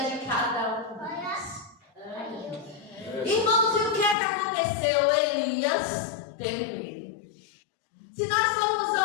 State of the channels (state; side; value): drops out; right; at 4.2 s